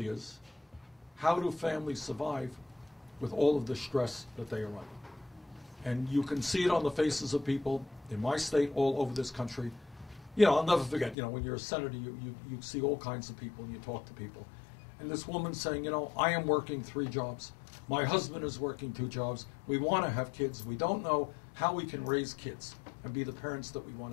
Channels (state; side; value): drops out; right; at 11.2 s